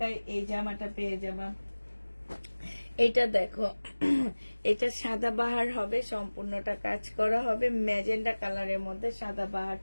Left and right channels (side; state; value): both; inverted; correlation -1.00